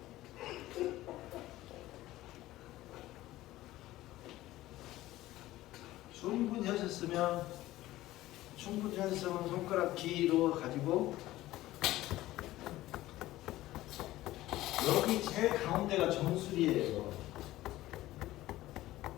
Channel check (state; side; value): quieter; right; 16.2 dB